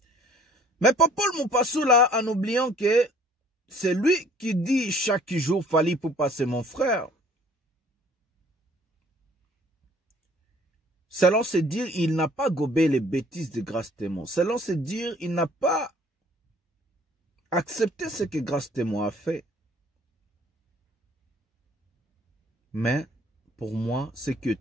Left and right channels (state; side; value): normal; both; correlation 0.55